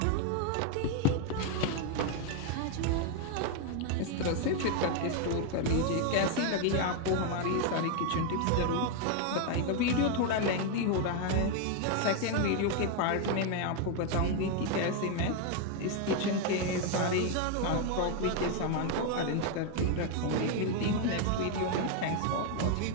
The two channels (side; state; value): both; different; correlation 0.01